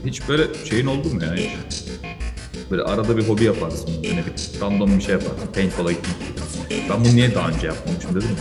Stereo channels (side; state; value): both; identical; correlation 1.00